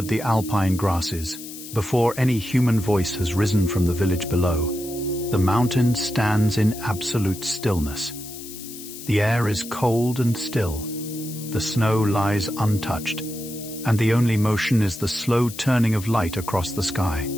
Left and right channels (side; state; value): left; noise; hiss, 13 dB below the sound